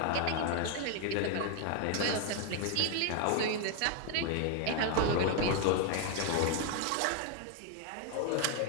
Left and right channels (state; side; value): different; both; correlation 0.00